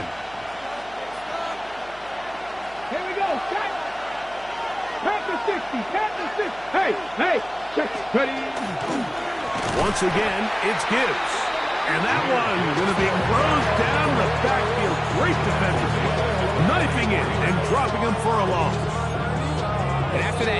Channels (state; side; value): noise; right; hum, 24 dB below the sound